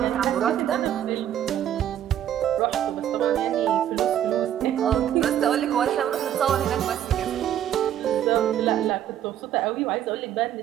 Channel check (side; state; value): left; quieter; 10.8 dB